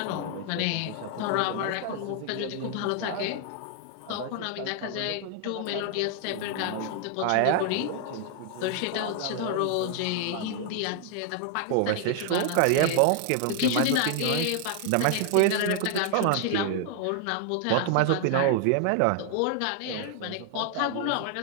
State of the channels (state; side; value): different; both; correlation 0.00